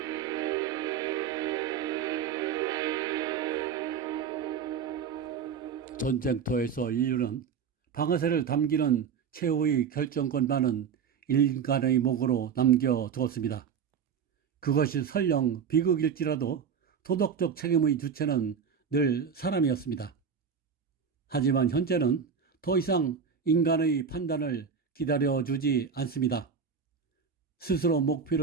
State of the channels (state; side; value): quieter; left; 6.8 dB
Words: 전쟁터에서 인류는 방아쇠를 당기는 최후의 결정권만은 인간의 목으로 남겨두었습니다. 그것이 설령 비극일지라도 도덕적 책임의 주체는 늘 사람이었습니다. 하지만 현재는 더 이상 인간의 판단을 기다려주지 않습니다. 스스로